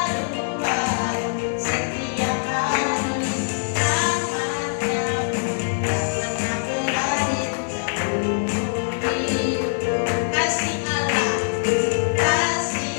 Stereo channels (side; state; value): right; silent; digital silence